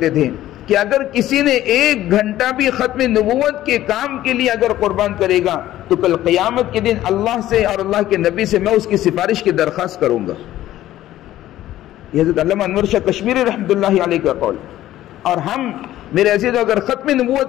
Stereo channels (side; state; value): right; quieter; 13.9 dB